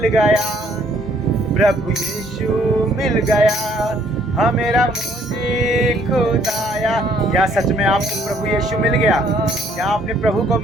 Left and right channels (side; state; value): both; normal; correlation 0.64